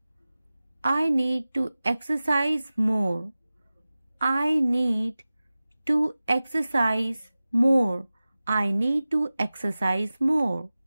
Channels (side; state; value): both; inverted; correlation -0.97